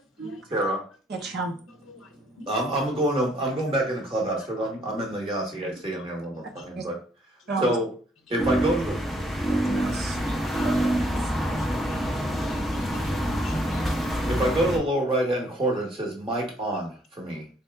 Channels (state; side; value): normal; both; correlation 0.66